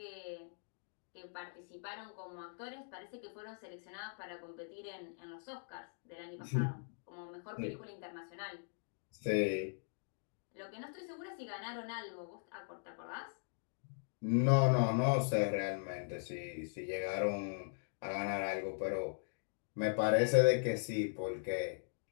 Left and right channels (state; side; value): silent; right; digital silence